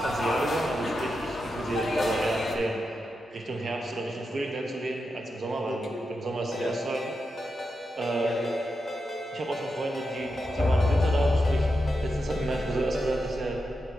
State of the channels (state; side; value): normal; both; correlation 0.87